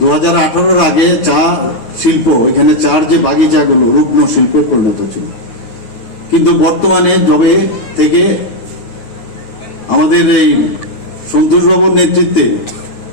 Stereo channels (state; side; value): late; right; 9.8 ms